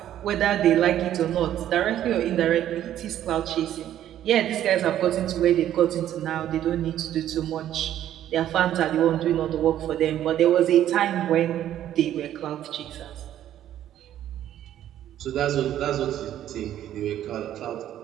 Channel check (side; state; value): left; quieter; 11.6 dB